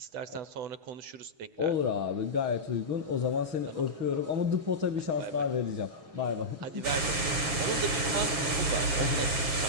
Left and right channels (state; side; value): late; left; 7.3 ms